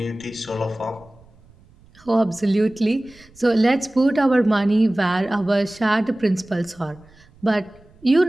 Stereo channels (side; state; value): right; noise; rumble, 27 dB below the sound